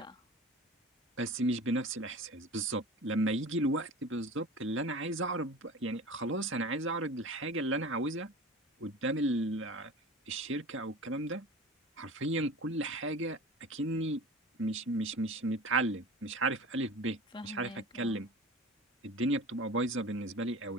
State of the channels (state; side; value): normal; both; correlation 0.37